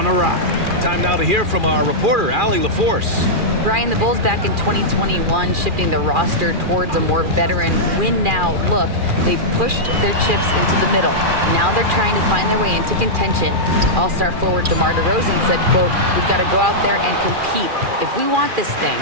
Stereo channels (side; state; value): left; late; 2.4 ms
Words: awry. Time now to hear from our reporter, Allie LaForce. Brian, the Bulls back in 2021 shifting the roster towards a more veteran win-now look. They've pushed their chips into the middle. Now they're trying to find their way into contention. All-star forward DeMar DeRozan said, quote, "We've got to go out there and compete. If we want this thing,